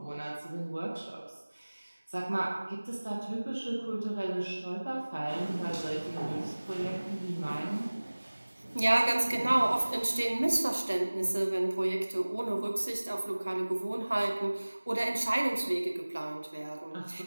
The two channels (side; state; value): both; inverted; correlation -1.00